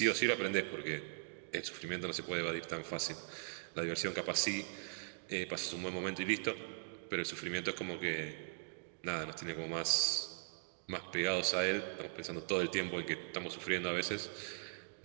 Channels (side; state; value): left; silent; digital silence